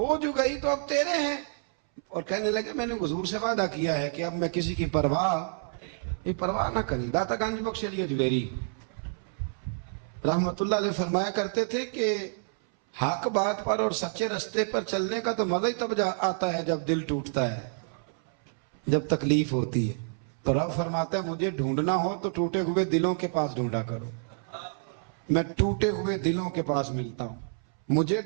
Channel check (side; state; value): left; silent; 59 dB below the other